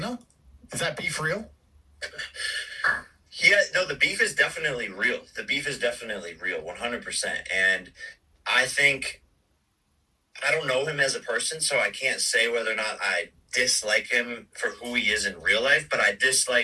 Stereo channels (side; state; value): both; identical; correlation 1.00